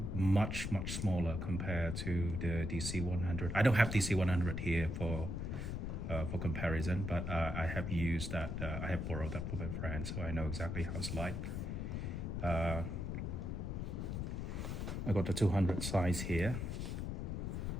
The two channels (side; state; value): left; noise; rumble, 3 dB below the sound